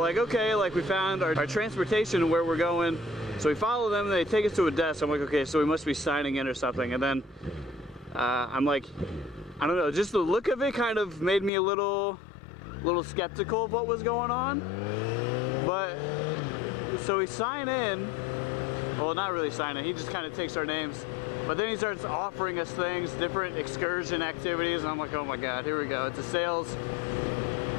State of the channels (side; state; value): right; drops out; at 11.5 s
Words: okay, like we found our transportation and where we're going. So we follow them and they take us to a desk. I'm like, okay, so we must be signing in or something. And then I'm like, I don't know, just the look of it kind of made me a little skeptical of what was going on. But so we sign in, well, not really sign in, he just kind of takes our names. But then he starts offering us things, different excursion activities, and I'm like, oh my god, here we go. It's a sales